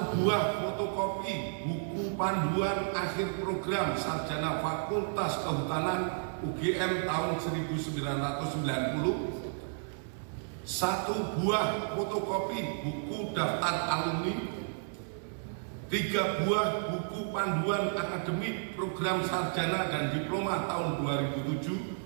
buah fotokopi buku panduan akhir program sarjana Fakultas Kehutanan UGM tahun 1990, 1 buah fotokopi buku daftar alumni, 3 buah buku panduan akademik program sarjana dan diploma tahun 2007,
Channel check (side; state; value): left; silent; digital silence